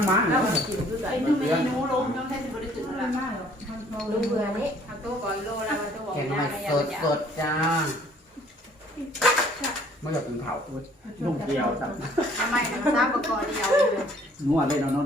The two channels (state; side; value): normal; both; correlation 0.58